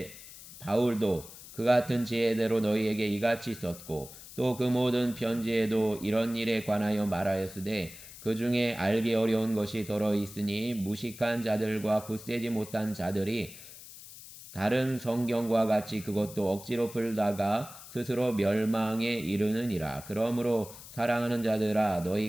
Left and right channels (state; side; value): noise; left; hiss, 16 dB below the sound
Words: 바울도 그 같은 지혜대로 너희에게 이같이 썼고 또 그 모든 편지에도 이런 일에 관하여 말하였으되 그 중에 알기 어려운 것이 더러 있으니 무식한 자들과 굳세지 못한 자들이 다른 성경과 같이 그것도 억지로 풀다가 스스로 멸망에 이르느니라. 그러므로 사랑하는 자들아,